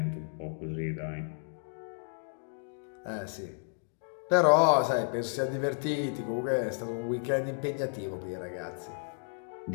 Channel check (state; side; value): silent; right; 56 dB below the other